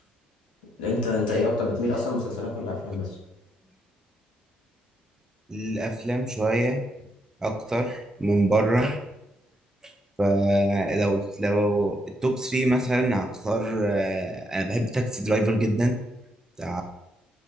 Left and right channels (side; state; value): both; normal; correlation 0.77